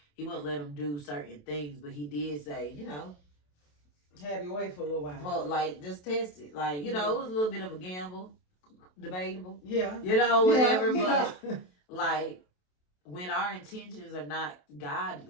He wouldn't let him do certain things. But he did say, have your way for a little while. Well, like just test it. Like it was a little bit of a gamble. Debatable, whatever. But like when our intentions are not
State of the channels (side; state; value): right; late; 27 ms